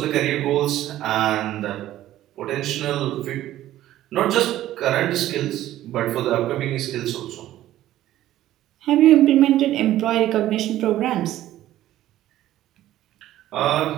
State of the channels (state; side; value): quieter; left; 13.7 dB